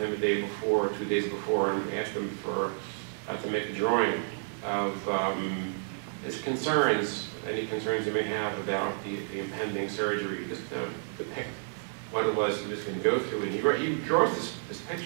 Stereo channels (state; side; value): silent; left; 58 dB below the other